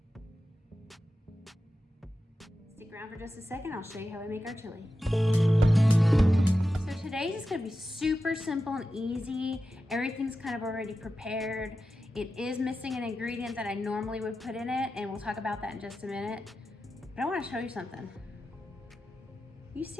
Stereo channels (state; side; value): normal; both; correlation 0.92